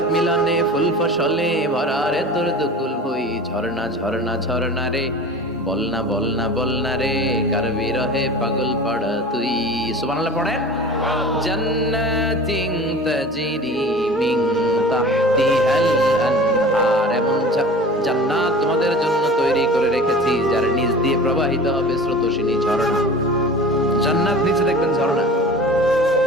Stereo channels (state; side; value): normal; both; correlation 0.38